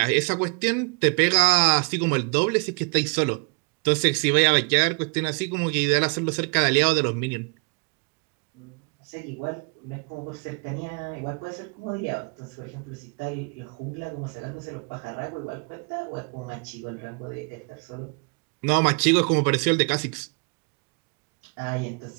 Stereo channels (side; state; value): left; quieter; 34.6 dB